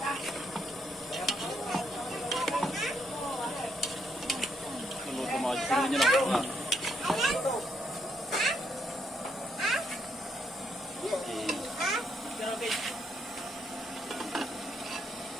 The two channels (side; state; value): both; normal; correlation 0.75